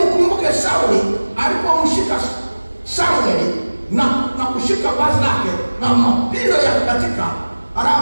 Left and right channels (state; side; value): inverted; both; correlation -1.00